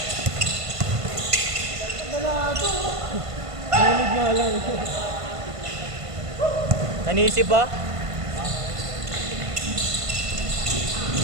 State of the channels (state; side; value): late; left; 1.5 ms